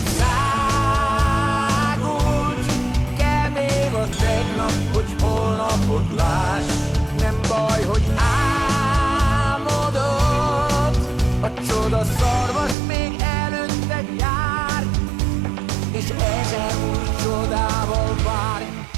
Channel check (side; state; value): left; drops out; at 12.8 s